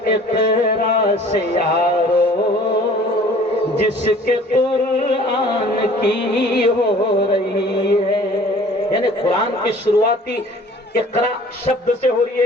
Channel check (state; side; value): normal; both; correlation 0.50